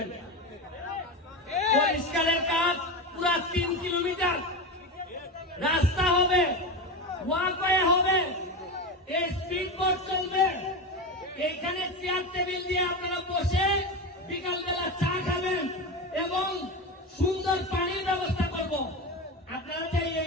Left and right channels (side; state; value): both; normal; correlation 0.20